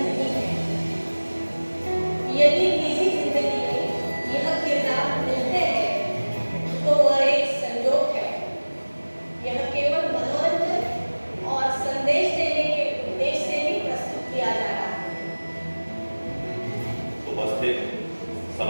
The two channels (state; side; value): inverted; both; correlation -1.00